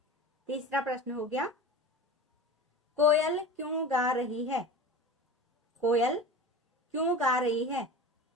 तीसरा प्रश्न हो गया, कोयल क्यों गा रही है? कोयल क्यों गा रही है?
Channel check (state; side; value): normal; both; correlation 0.33